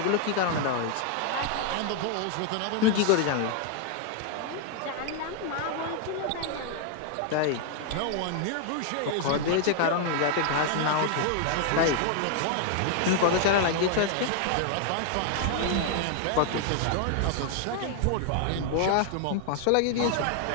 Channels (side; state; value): both; different; correlation 0.00